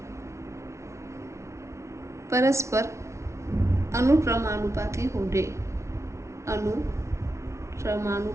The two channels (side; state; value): left; late; 0.13 ms